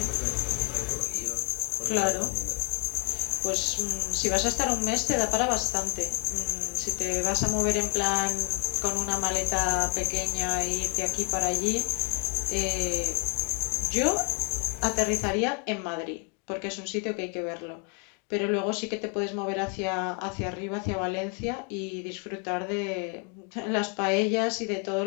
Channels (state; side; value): quieter; right; 31.7 dB